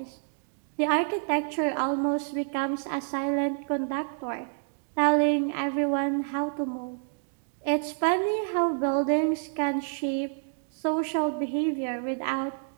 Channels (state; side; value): silent; left; digital silence